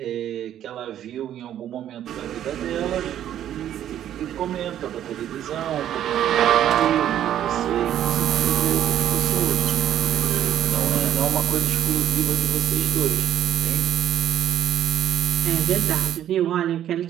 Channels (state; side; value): quieter; left; 11.1 dB